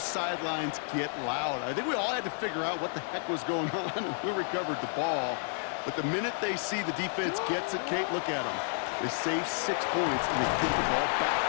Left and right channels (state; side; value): silent; right; 57 dB below the other